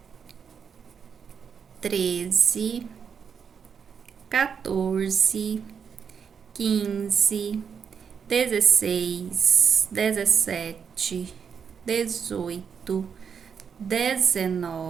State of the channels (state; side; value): quieter; left; 6.8 dB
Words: 13, 14, 15, 16, 17, 18,